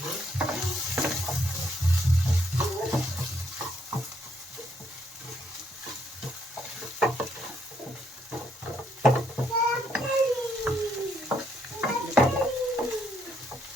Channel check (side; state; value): both; normal; correlation 0.72